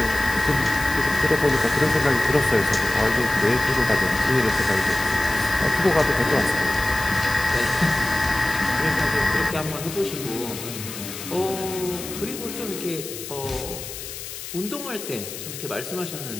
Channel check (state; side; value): noise; left; hiss, 10 dB below the sound